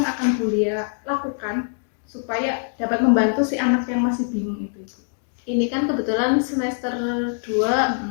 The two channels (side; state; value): right; silent; 63 dB below the other